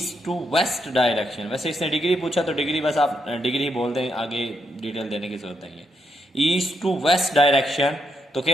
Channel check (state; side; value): normal; both; correlation 0.80